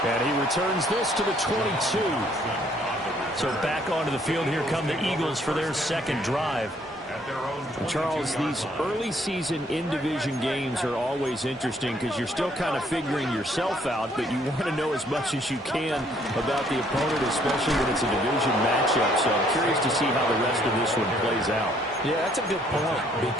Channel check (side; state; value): both; normal; correlation 0.65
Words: And he returns this to the 22. So back onto the field, here come the Eagles for their second drive. Charles, these early season in-division games are always interesting because you're still kind of figuring yourself out, but you want to know as much as you can about the opponent, especially when it's a division matchup. So I'm curious to see how the rest of this one plays out. Yeah, that's a good point